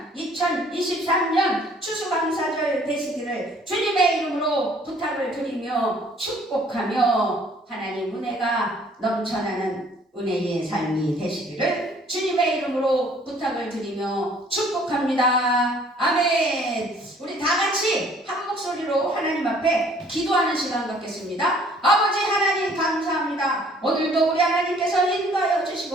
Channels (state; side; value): normal; both; correlation 0.58